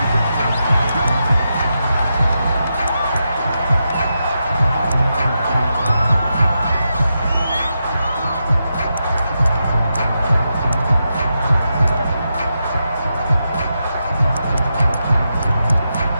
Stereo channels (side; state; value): both; inverted; correlation -0.86